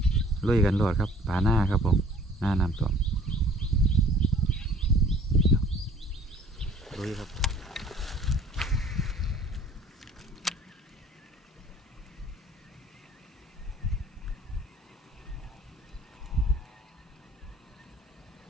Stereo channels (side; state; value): both; normal; correlation 0.54